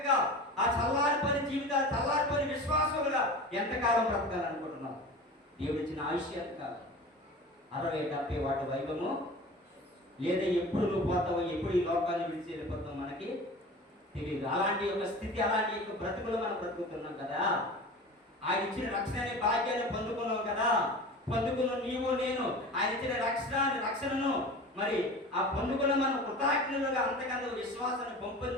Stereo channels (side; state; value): both; normal; correlation 0.36